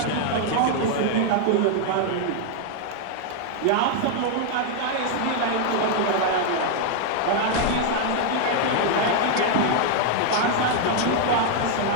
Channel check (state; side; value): different; both; correlation 0.00